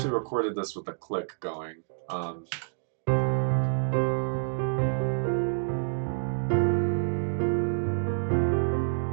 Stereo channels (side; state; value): left; silent; digital silence